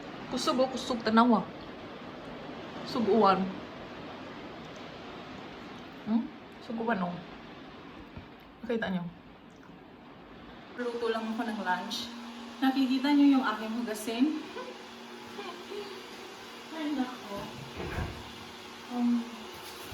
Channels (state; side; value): identical; both; correlation 1.00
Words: Kusog o kusog tanawa. Suguan. Suguan o. Nakita nyo? Luto lang ako ng lunch. Nakikita nyo yung aking hugasin? Ay, nako.